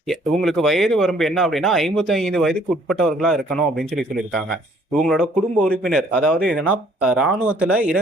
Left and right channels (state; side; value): normal; both; correlation 0.61